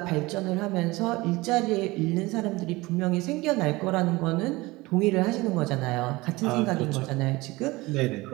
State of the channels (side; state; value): left; quieter; 21.5 dB